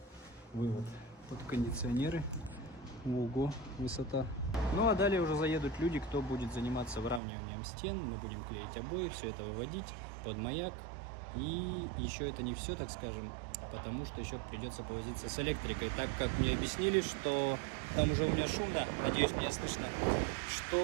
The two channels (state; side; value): drops out; left; at 7.2 s